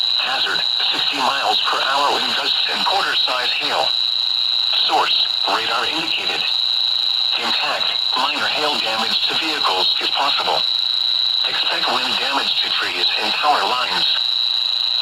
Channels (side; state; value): both; identical; correlation 1.00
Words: Hazard, 60 miles per hour wind gusts and quarter-size hail. Source, radar indicated. Intact, minor hail damage to vehicles is possible. Expect wind damage to trees and power lines.